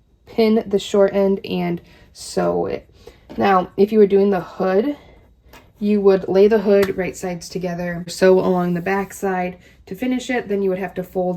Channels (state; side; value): identical; both; correlation 1.00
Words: pin the short end and sew it. Now, if you were doing the hood, you would lay the hood right sides together, sew along the back side to finish it. Then you would have to